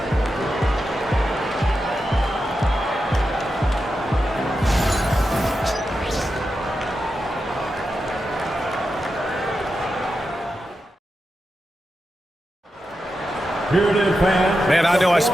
Here it is, fans. Man, I know I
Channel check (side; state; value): both; normal; correlation 0.89